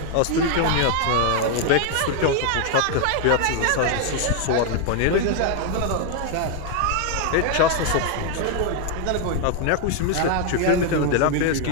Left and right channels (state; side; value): different; both; correlation 0.00